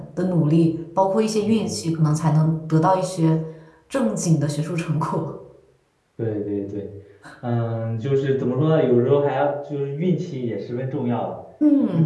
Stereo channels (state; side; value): identical; both; correlation 1.00